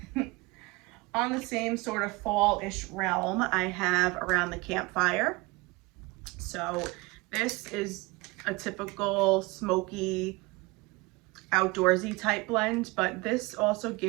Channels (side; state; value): left; quieter; 24.0 dB